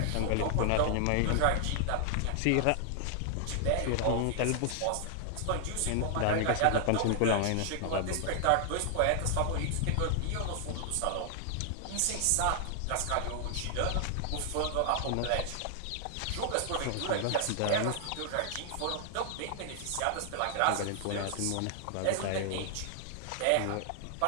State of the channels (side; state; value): both; different; correlation 0.00